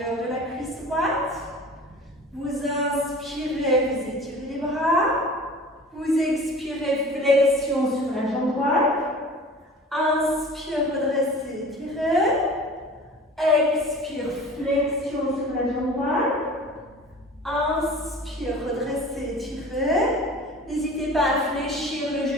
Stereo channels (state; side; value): normal; both; correlation 0.41